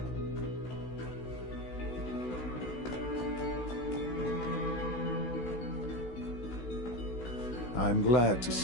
I'm glad to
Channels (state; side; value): late; right; 16 ms